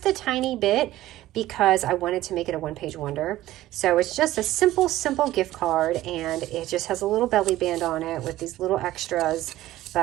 a tiny bit because I wanted to make it a one-page wonder. So it's just a simple gift card, and it just has a little belly band on it with these little extras.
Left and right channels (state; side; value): quieter; left; 15.3 dB